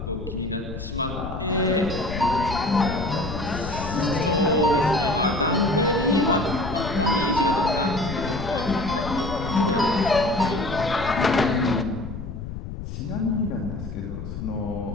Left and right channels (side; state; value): left; noise; rumble, 8 dB below the sound